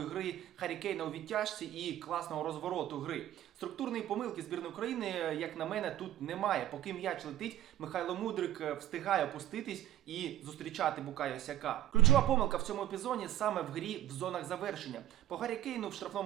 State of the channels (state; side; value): quieter; left; 13.0 dB